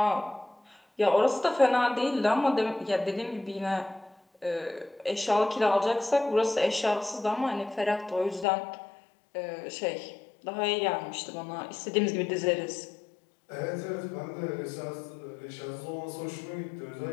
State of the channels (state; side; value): drops out; right; at 8.5 s